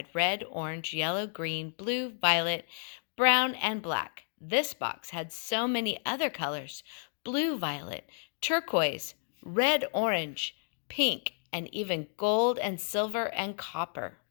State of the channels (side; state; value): right; silent; digital silence